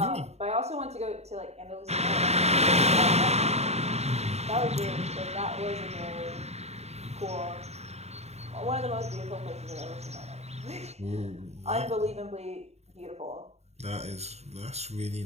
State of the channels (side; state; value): left; late; 0.31 ms